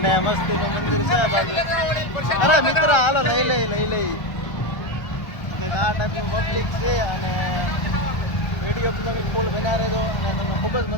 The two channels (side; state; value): right; late; 1.4 ms